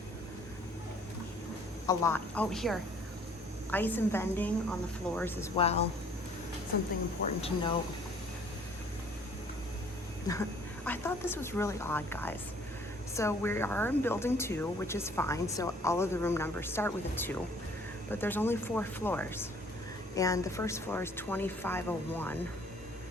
a lot. Oh, here, ice and vending on the floors as well. Something important to note. I thought this was really odd, guys. So we are in building 2, which is fine. So all of the room numbers start with a 2, but there's only 4 floors. And the first floor is 2501.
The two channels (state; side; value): normal; both; correlation 0.57